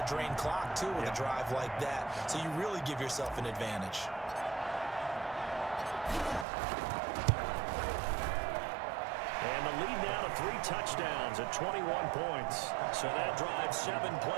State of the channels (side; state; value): left; drops out; at 6.5 s